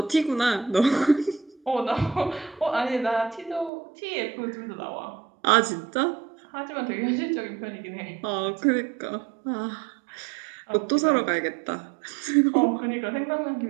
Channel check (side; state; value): left; drops out; at 3.7 s